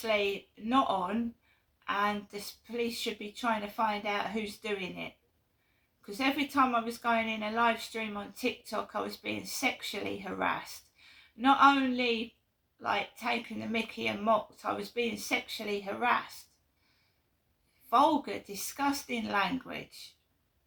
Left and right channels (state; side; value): identical; both; correlation 1.00